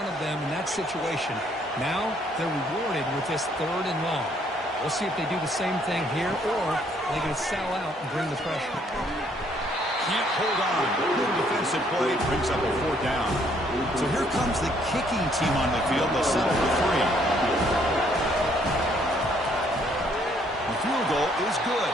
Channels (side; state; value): both; normal; correlation 0.66